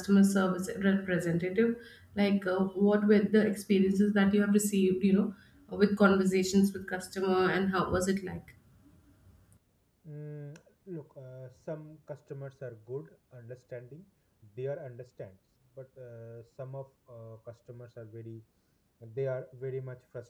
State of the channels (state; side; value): identical; both; correlation 1.00